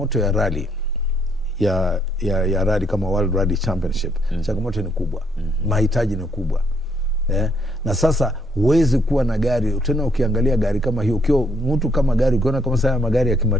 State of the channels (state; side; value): normal; both; correlation 0.70